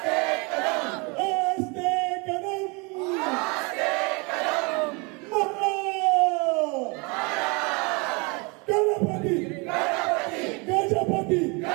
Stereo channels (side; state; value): left; quieter; 29.9 dB